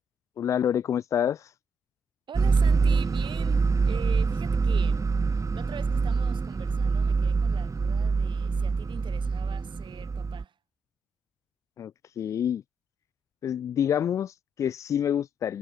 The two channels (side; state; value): both; normal; correlation 0.82